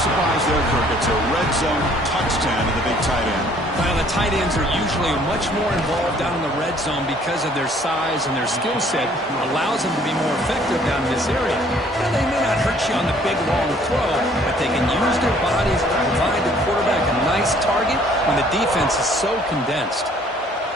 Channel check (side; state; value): both; normal; correlation 0.59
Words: surprise there, Kirk. It's a red zone touchdown to the big tight end. Well, the tight ends are usually much more involved down in the red zone because of their size and their skill set. Allows them to be more effective down in this area. Now, they may not hurt you on the big, long throw, but they can use their bodies to provide the quarterback a nice target when the defense is so condensed.